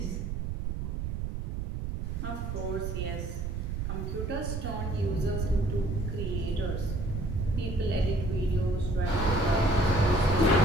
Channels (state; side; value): noise; right; rumble, 3 dB below the sound